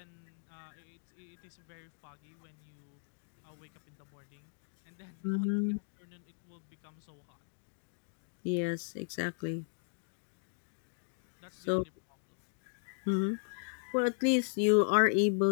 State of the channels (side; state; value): right; silent; digital silence